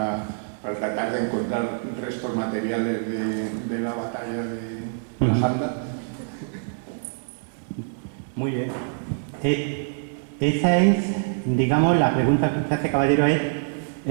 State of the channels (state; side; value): silent; left; digital silence